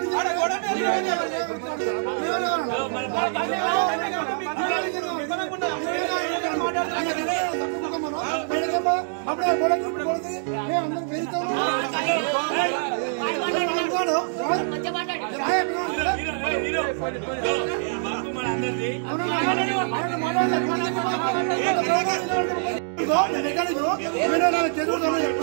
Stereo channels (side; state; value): left; silent; digital silence